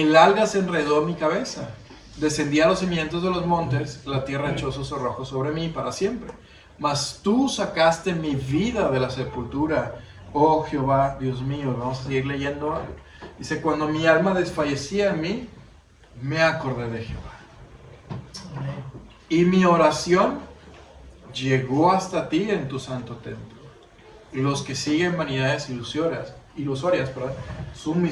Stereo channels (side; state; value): both; identical; correlation 1.00